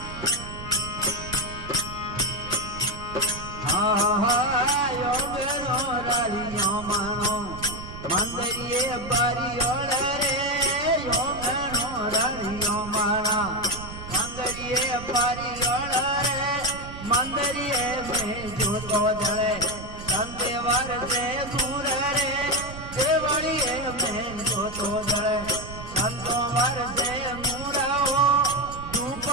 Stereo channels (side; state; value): right; noise; rumble, 12 dB below the sound